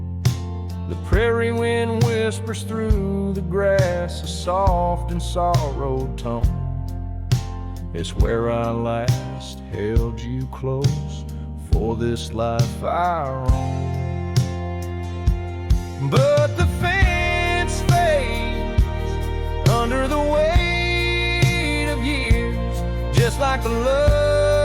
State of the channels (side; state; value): both; identical; correlation 1.00